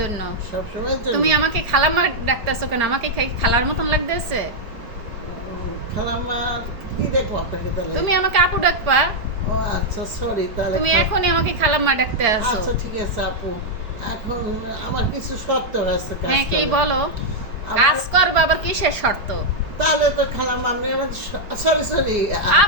সব সময়ের জন্য? তুমি আমাকে খালাম্মা ডাকতেছো কেন? আমাকে খালার মতন লাগতেছে। খালাম্মা কি দেখবো আপনাকে তাহলে? তুমি আমাকে আপু ডাকবা। ও আচ্ছা, সরি তাহলে। তুমি এখনই আমাকে খালাম্মা ডাকতে আসো। আচ্ছা ঠিক আছে আপু, এখন আমার কিছু শর্ত আছে কাজ হ্যাঁ কি করার। বলো? আমার- কাজ করবা আবার কিসের শর্ত? তাহলে তো খালাম্মা আপনি আমার সরি সরি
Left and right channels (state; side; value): late; left; 4.9 ms